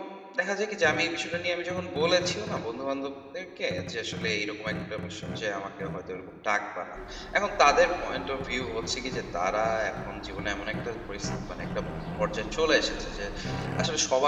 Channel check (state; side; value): identical; both; correlation 1.00